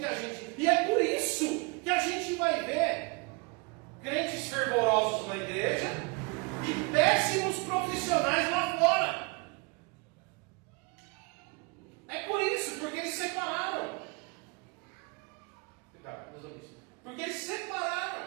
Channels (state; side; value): quieter; left; 29.7 dB